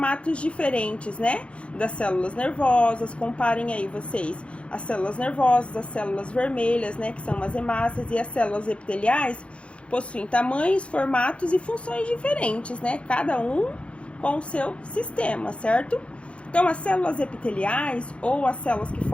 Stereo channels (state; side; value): late; right; 0.060 ms